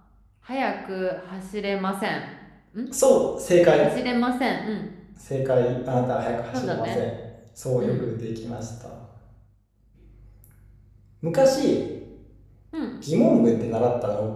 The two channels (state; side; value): identical; both; correlation 1.00